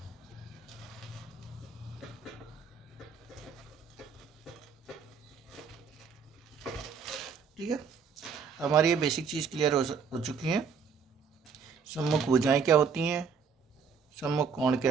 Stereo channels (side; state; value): left; quieter; 6.0 dB